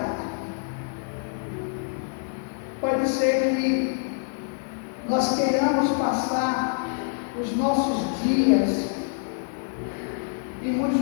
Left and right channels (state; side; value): silent; right; digital silence